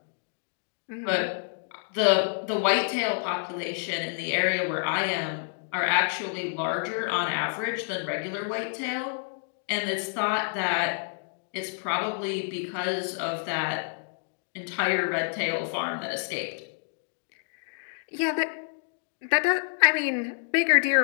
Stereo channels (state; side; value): silent; right; digital silence